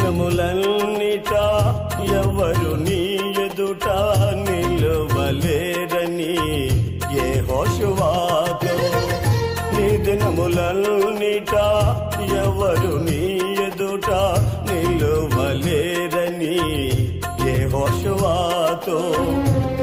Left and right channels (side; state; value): both; identical; correlation 1.00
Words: ఎవరు నీ ఎదుట నిలువలేరని యెహోషువతో నీ దినములన్నిట ఎవరు నీ ఎదుట నిలువలేరని యెహోషువతో